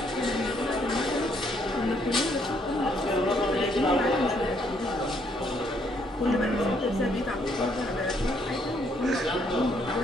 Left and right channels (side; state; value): both; normal; correlation 0.70